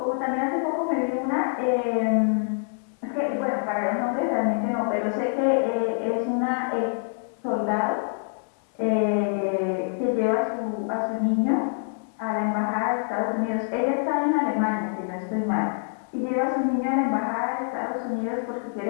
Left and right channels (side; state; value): right; silent; digital silence